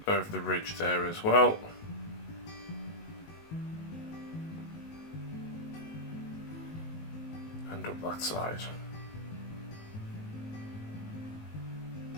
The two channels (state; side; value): late; right; 19 ms